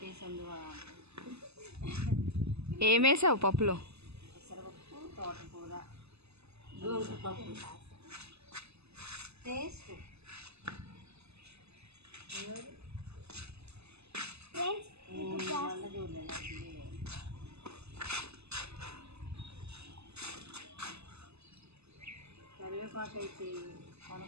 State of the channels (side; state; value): left; late; 0.79 ms